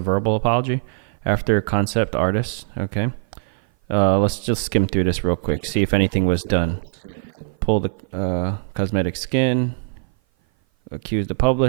apology after concept artist. Okay. Let's just skim through this real quick. Yeah, see let's if do a anything little was quick done. little skim milk. Pull the cosmetic skin. Accuse the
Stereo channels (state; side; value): silent; left; 56 dB below the other